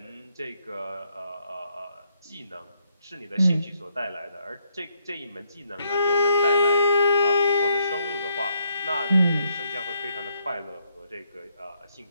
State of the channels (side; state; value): both; inverted; correlation -0.74